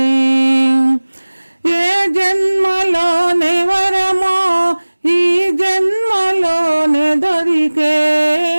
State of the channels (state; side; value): inverted; both; correlation -1.00